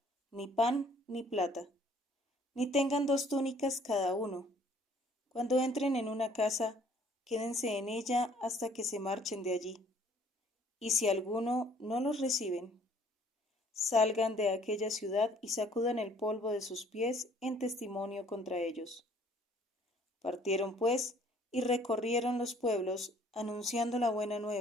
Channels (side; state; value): both; normal; correlation 0.58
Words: ni pan, ni plata, ni tengan 2 túnicas cada uno. Cuando entren en una casa, quédense en ella hasta que se marchen de allí. Y si alguno no los reciben, salgan de aquella ciudad y sacudan el polvo de sus pies en testimonio contra ellos. Partieron pues y recorrieron los pueblos, anunciando la buena